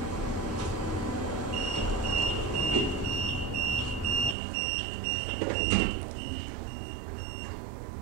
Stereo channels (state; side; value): drops out; left; at 4.4 s